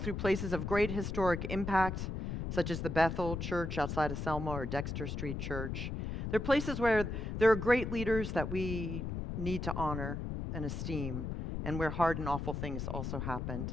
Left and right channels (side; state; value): left; noise; rumble, 4 dB below the sound